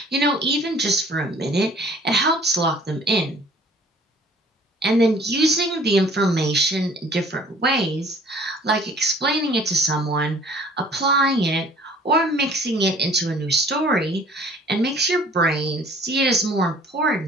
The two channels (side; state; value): both; normal; correlation 0.53